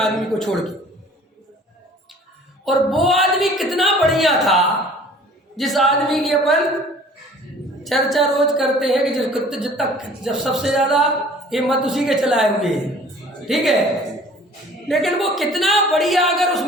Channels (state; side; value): normal; both; correlation 0.50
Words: को छोड़ के। और वो आदमी कितना बढ़िया था जिस आदमी की अपन चर्चा रोज करते हैं कि जब सबसे ज्यादा हिम्मत उसी के चलाए हुए हैं। ठीक है, लेकिन वो कितना बढ़िया, अगर उस